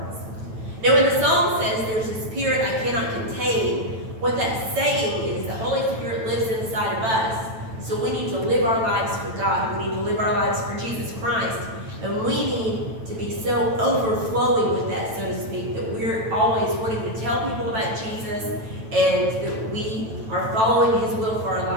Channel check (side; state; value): left; late; 9.0 ms